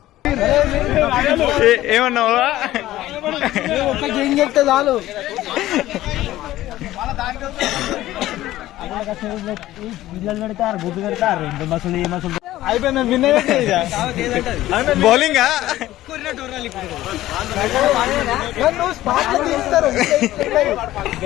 ఏమన్నావా? చెప్తే చాలు. బౌలింగ్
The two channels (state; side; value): quieter; right; 15.1 dB